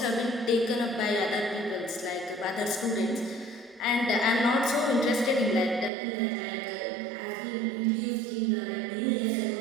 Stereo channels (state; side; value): drops out; left; at 5.9 s